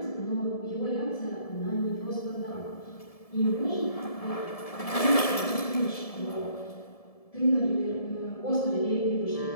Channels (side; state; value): right; late; 1.7 ms